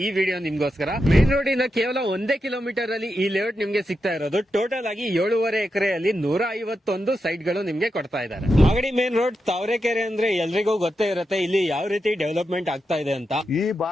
ಈ ವಿಡಿಯೋ ನಿಮ್ಗೋಸ್ಕರ. ಮೇನ್ ರೋಡ್ ಇಂದ ಕೇವಲ 1 ಕಿಲೋಮೀಟರ್ ಅಲ್ಲಿ ಈ ಲೇಔಟ್ ನಿಮ್ಗೆ ಸಿಗ್ತಾ ಇರೋದು. ಟೋಟಲ್ ಆಗಿ 7.5 ಎಕರೆಯಲ್ಲಿ 151 ಸೈಟ್ ಗಳು ನಿಮ್ಗೆ ಕೊಡ್ತಾ ಇದ್ದಾರೆ. ಮಾಗಡಿ ಮೇನ್ ರೋಡ್ ತಾವರೆಕೆರೆ ಅಂದ್ರೆ ಎಲ್ರಿಗೂ ಗೊತ್ತೇ ಇರುತ್ತೆ ಇಲ್ಲಿ ಯಾವ ರೀತಿ ಡೆವಲಪ್ಮೆಂಟ್ ಆಗ್ತಾ ಇದೆ ಅಂತ. ಈ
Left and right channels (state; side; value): normal; both; correlation 0.87